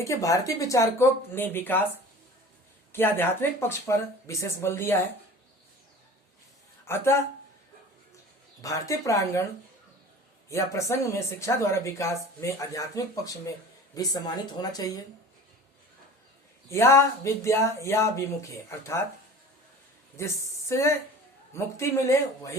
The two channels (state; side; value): normal; both; correlation 0.41